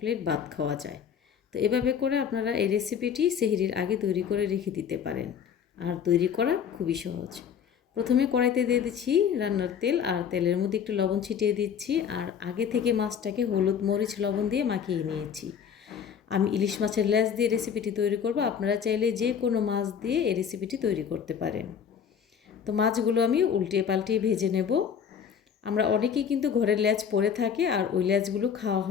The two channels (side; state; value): right; quieter; 7.7 dB